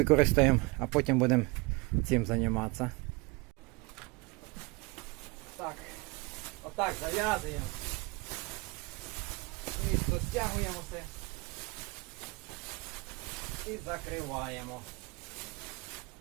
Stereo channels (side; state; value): left; quieter; 26.4 dB